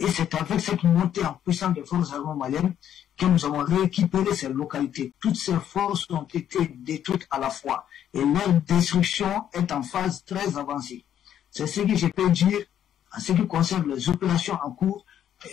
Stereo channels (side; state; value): right; quieter; 10.2 dB